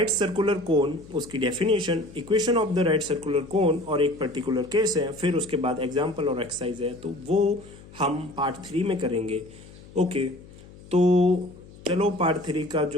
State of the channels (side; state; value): left; noise; hum, 20 dB below the sound